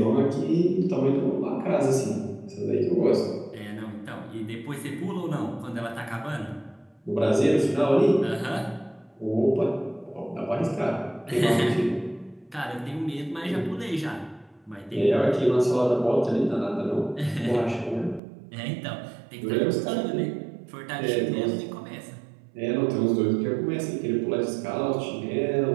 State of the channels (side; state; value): left; drops out; at 18.2 s